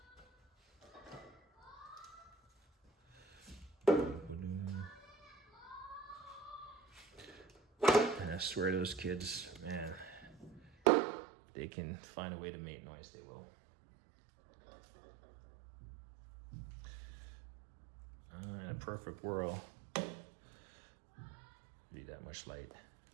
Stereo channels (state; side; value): drops out; left; at 10.7 s